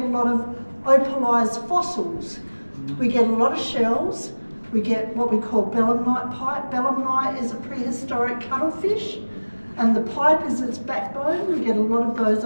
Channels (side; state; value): both; inverted; correlation -1.00